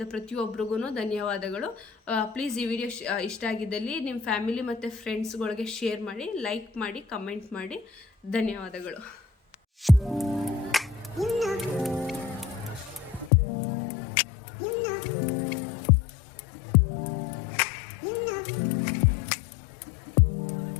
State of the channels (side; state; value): right; drops out; at 13.3 s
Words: ಪ್ರತಿಯೊಬ್ಬರಿಗೂ ಧನ್ಯವಾದಗಳು. ಪ್ಲೀಸ್ ಈ ವಿಡಿಯೋ ಇಷ್ಟ ಆಗಿದ್ದಲ್ಲಿ ನಿಮ್ಮ ಫ್ಯಾಮಿಲಿ ಮತ್ತು ಫ್ರೆಂಡ್ಸ್ಗಳಿಗೆ ಶೇರ್ ಮಾಡಿ, ಲೈಕ್ ಮಾಡಿ, ಕಮೆಂಟ್ ಮಾಡಿ. ಧನ್ಯವಾದಗಳು.